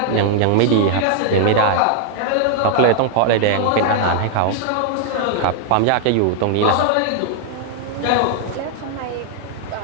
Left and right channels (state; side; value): different; both; correlation 0.00